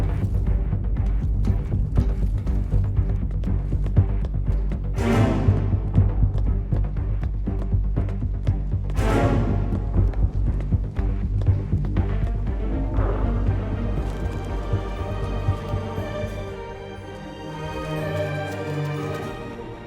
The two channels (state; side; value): identical; both; correlation 1.00